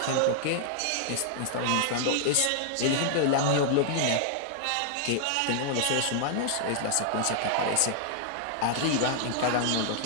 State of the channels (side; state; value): both; different; correlation -0.01